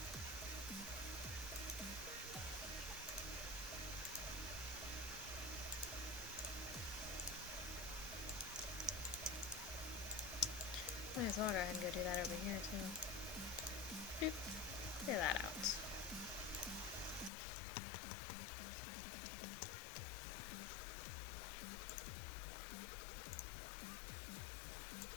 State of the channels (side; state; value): right; drops out; at 17.3 s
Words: Might as well go ahead and go do that over here too. Boop. Clear that out.